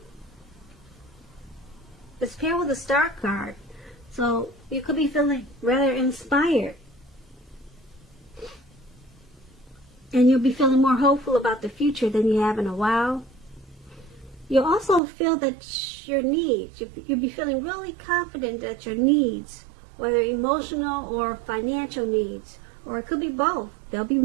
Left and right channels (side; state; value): left; drops out; at 15.0 s